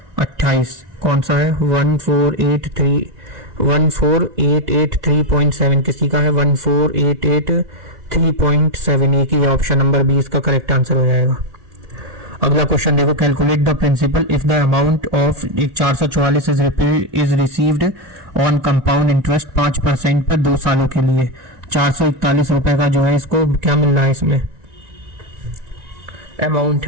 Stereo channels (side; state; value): left; late; 1.9 ms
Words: 28, कौन सा है 14883.7, किसी का है 14883.7, एक ही ऑप्शन नंबर 20 का करेक्ट आंसर हो जाएगा। अगला क्वेश्चन देखो, calculate the principal if the amount of 444 is received on compound interest 5% पर 2 सालों के लिए। 441 रुपए का जो है इसको क्या मिल रहा है, इसमें अमाउंट